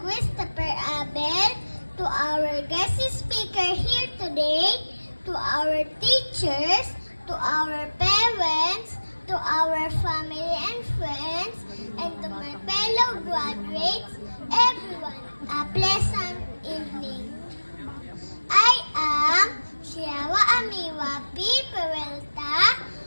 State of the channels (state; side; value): inverted; both; correlation -1.00